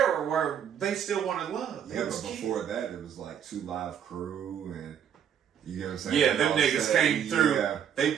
where they still wanted love. They Yeah, was but kids. before that, it was like 2 Live Crew and you get what I'm saying? Yeah, them All niggas that. came through. Yeah, They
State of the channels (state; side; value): quieter; left; 8.7 dB